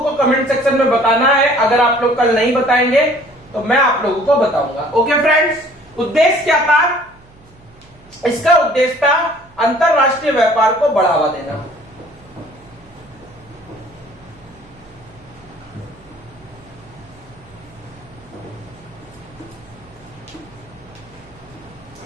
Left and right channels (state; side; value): noise; right; hum, 27 dB below the sound